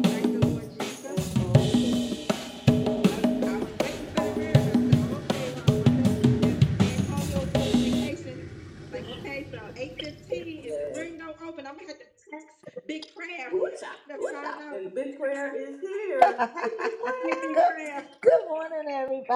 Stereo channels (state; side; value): identical; both; correlation 1.00